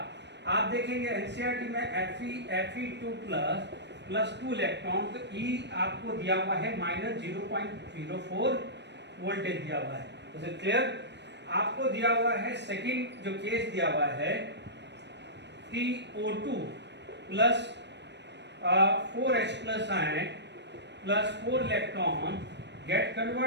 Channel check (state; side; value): late; left; 0.50 ms